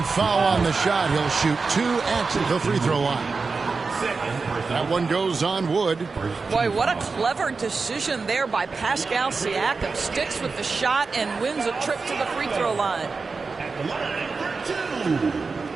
foul on the shot. He'll shoot 2 at the free throw line. That one goes on Wood. Boy, what a clever decision there by Pascal Siakam. Sticks with the shot and wins a trip to the free throw line. At the line for 2.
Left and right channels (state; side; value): quieter; left; 4.4 dB